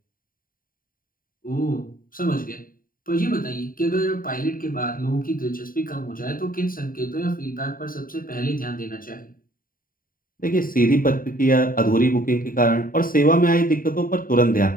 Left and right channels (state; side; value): late; right; 0.41 ms